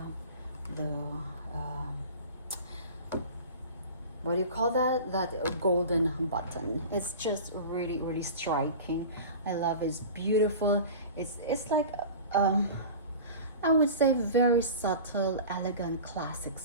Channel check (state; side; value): inverted; both; correlation -0.36